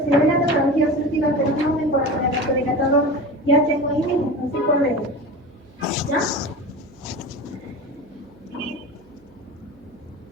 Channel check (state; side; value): noise; right; hum, 29 dB below the sound